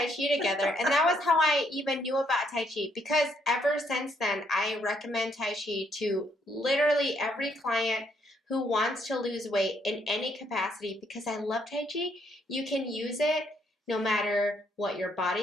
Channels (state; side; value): normal; both; correlation 0.71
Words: Chi together, and that was how I even knew about Tai Chi, because ever since then, I recommend Tai Chi to literally every client who wants to lose weight in any capacity, because I love Tai Chi. You can use it no matter what your